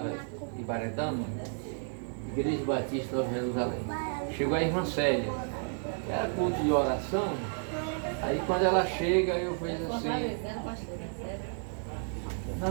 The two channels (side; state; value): left; silent; 57 dB below the other